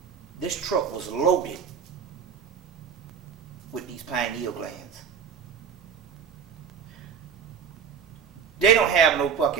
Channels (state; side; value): quieter; left; 7.1 dB